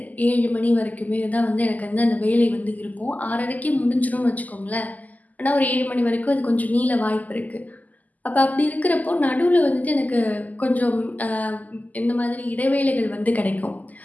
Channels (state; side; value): late; right; 0.079 ms